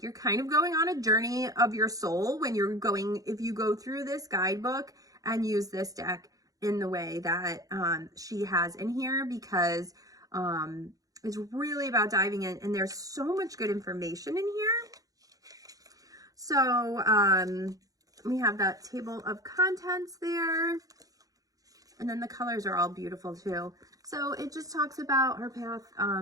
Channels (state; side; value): late; left; 0.17 ms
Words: you're kind of going on a journey of your soul when you're going, if you go through this guidebook and use this deck in the way that she has in here, because it's really about diving in, and there's so much good information in here. So we have that table of contents there, and then the colors are all beautiful too. So it just talks about her path,